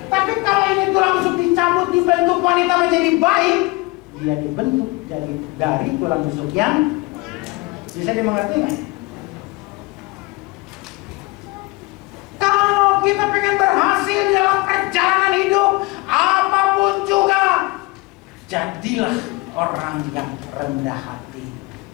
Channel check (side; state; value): right; quieter; 24.2 dB